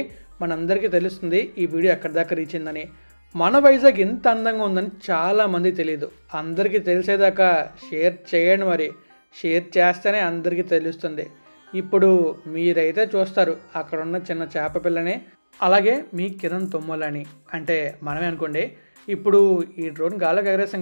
మనందరికీ తెలుస్తుంది ఈ వీడియో ఎక్కడి దాకా రీచ్ అయిందని. మన వైజాగ్ ఎంత అందంగా ఉందని చాలామంది తెలియదు. అందరికీ తెలిసేదాకా షేర్ చేయండి. మరి షేర్ చేస్తేనే అందరికీ తెలుస్తుంది. ఇప్పుడు మీరైతే చూస్తారు అక్కడ ఉన్న చిన్న చేప పిల్లని, అలాగే మీ కిరణ్ తొమ్మలని, అంటే మనమే అనుకోండి. ఇప్పుడు ఈ డ్రోన్ గాల్లోకి ఎగరేసాం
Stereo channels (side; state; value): both; inverted; correlation -1.00